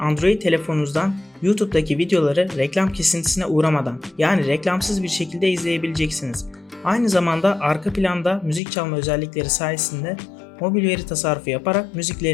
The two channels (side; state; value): right; drops out; at 8.6 s